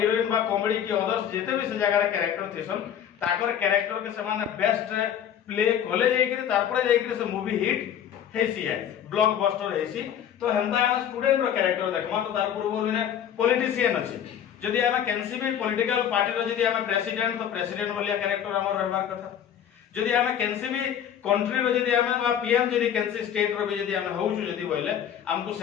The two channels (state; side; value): quieter; right; 9.4 dB